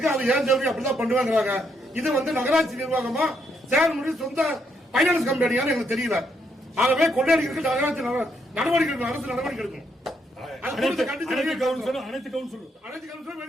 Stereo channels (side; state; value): both; normal; correlation 0.75